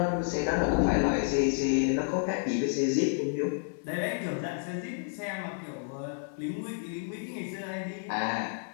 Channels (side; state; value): right; silent; 58 dB below the other